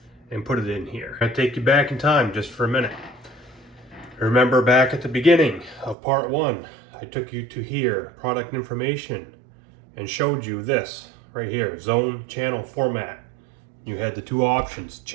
and put it in here. I'll take you back in time just for a minute. Remember back at the beginning of part 1, I took you to here, product information, and showed you this right here, zone channel format. You had the two options,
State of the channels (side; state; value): left; drops out; at 6.0 s